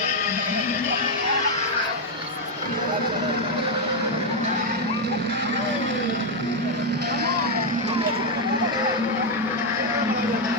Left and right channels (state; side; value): normal; both; correlation 0.02